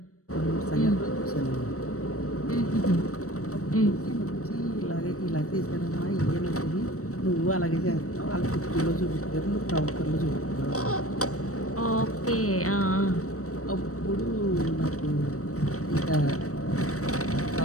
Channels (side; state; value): right; late; 0.65 ms